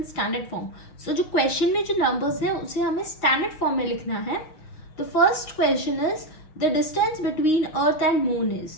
standard form. So जो क्वेश्चन में जो नंबर्स हैं उसे हमें स्टैंडर्ड फॉर्म में लिखना है। The first question is the distance between Earth and moon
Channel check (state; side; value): late; right; 6.4 ms